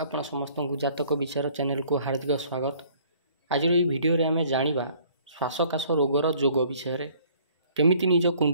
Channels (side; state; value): both; inverted; correlation -0.57